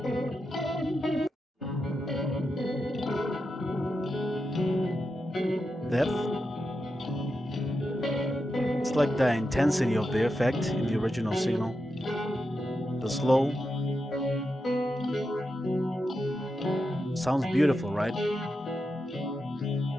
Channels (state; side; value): normal; both; correlation 0.88